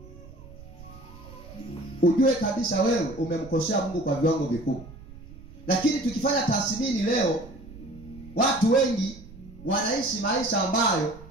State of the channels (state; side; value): noise; right; rumble, 18 dB below the sound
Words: ujue kabisa wewe umemkosea Mungu kwa viwango vikubwa. Lakini tukifanya tathmini leo, watu wengi wanaishi maisha ambayo